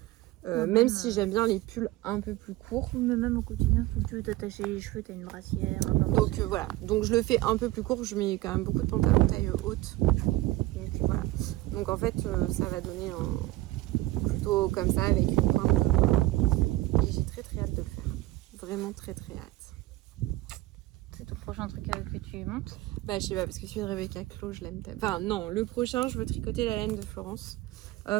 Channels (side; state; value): left; quieter; 17.9 dB